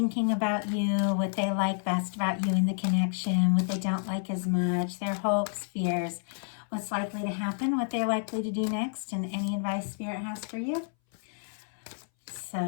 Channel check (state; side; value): silent; right; 58 dB below the other